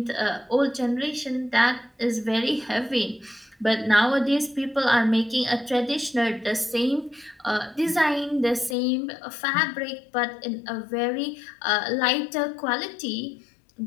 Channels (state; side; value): drops out; right; at 8.8 s